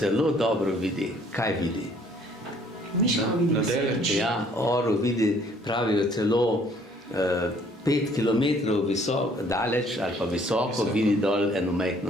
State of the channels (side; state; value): both; normal; correlation 0.60